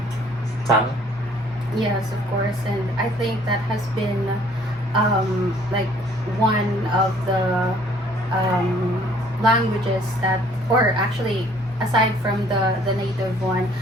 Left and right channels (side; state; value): both; normal; correlation 0.58